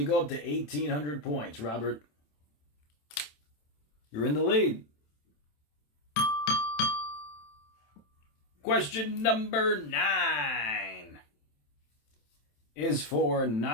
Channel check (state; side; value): late; right; 27 ms